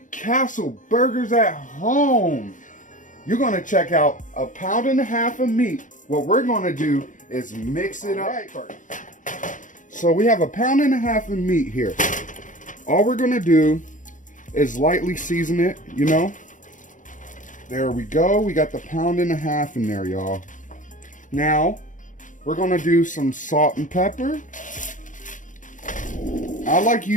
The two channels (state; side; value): late; right; 0.37 ms